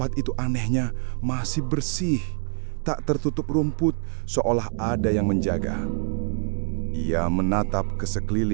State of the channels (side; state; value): left; silent; 62 dB below the other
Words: itu anehnya masih bersih, tak tertutup rumput, seolah ada yang menjaga. Ia menatap ke